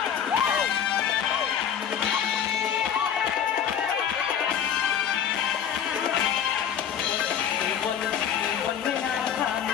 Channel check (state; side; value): quieter; right; 8.5 dB